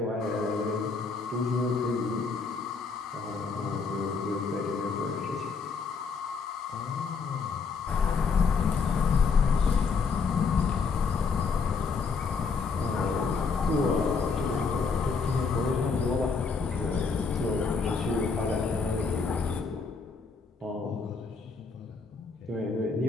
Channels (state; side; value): quieter; right; 4.9 dB